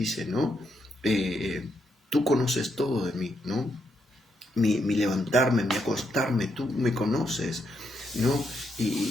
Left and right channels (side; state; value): both; normal; correlation 0.79